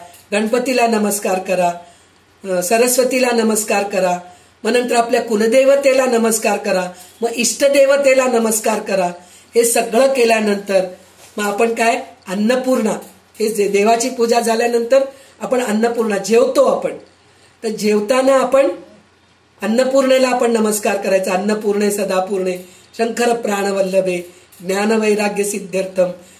गणपतीला नमस्कार करा, सरस्वतीला नमस्कार करा. मग नंतर आपल्या कुलदेवतेला नमस्कार करा, मग इष्टदेवतेला नमस्कार करा. हे सगळं केल्यानंतर मग आपण काय? अन्नपूर्णा, हे देवाची पूजा झाल्यानंतर आपण अन्नपूर्णा जेवतो आपण. तर जेवताना आपण अन्नपूर्णेला आपण नमस्कार करायचा. अन्नपूर्णे सदापूर्णे शंकर प्राणवल्लभे ज्ञानवैराग्य सिद्ध्यर्थम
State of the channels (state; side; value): identical; both; correlation 1.00